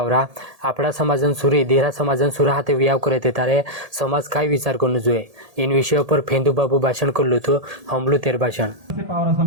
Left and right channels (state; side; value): late; left; 1.8 ms